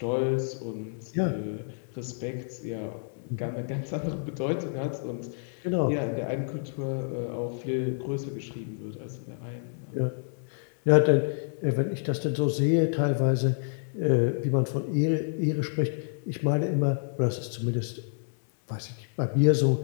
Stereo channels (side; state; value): right; silent; digital silence